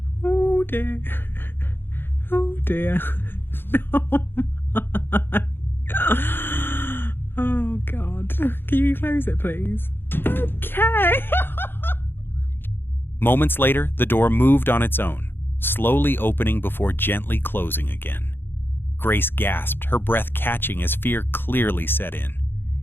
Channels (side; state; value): right; late; 0.10 ms